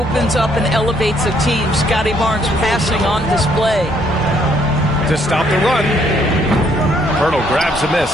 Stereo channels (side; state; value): both; normal; correlation 0.68